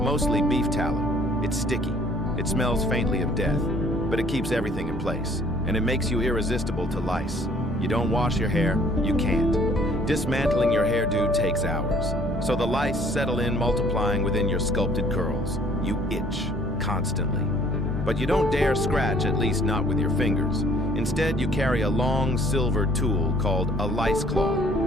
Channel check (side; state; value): both; normal; correlation 0.59